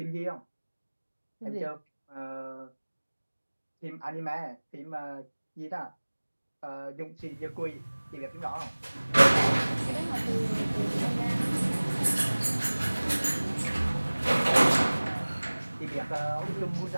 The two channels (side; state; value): both; inverted; correlation -1.00